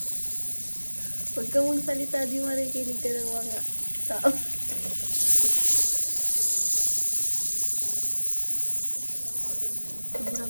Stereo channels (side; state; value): both; inverted; correlation -1.00